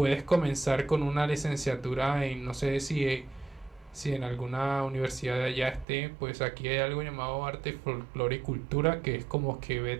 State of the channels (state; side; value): drops out; left; at 5.9 s